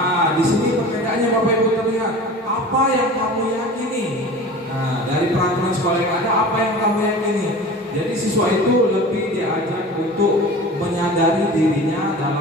di sini perbedaannya Bapak Ibu terlihat. Apa yang kamu yakini? Nah, dari peraturan sekolah yang ada, apa yang kamu yakini? Jadi siswa itu lebih diajak untuk menyadari dirinya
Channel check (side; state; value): both; normal; correlation 0.37